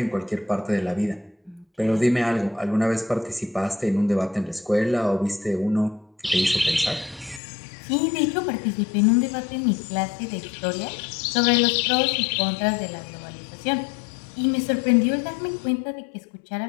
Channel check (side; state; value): right; drops out; at 7.4 s